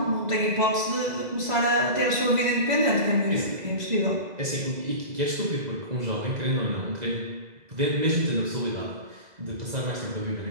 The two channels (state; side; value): late; left; 2.0 ms